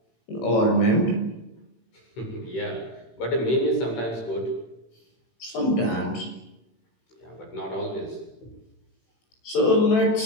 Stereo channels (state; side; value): late; right; 17 ms